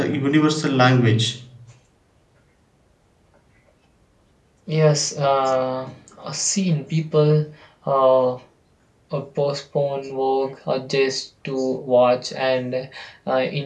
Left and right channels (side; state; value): both; identical; correlation 1.00